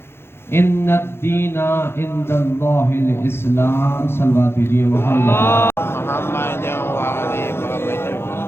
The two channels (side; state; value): right; late; 0.12 ms